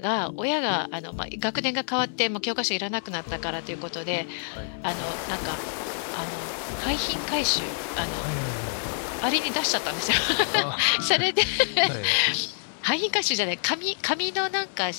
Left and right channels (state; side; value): silent; right; digital silence